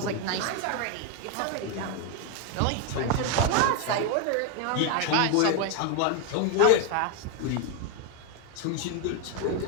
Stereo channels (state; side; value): different; both; correlation 0.01